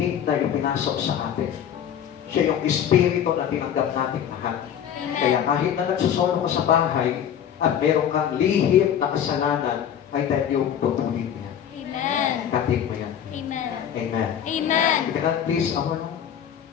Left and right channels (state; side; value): quieter; right; 9.3 dB